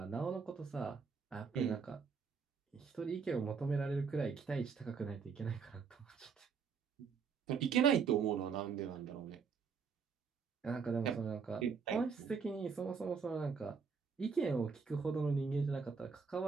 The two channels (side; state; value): left; quieter; 5.8 dB